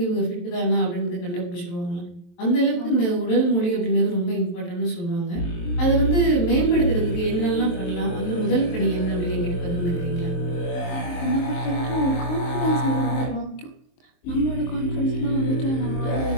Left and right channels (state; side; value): late; right; 23 ms